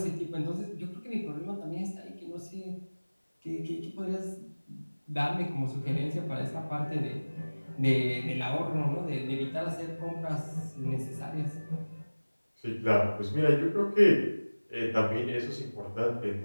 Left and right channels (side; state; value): both; inverted; correlation -1.00